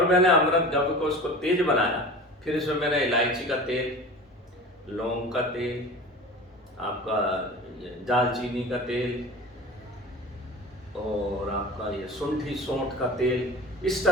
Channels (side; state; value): both; normal; correlation 0.36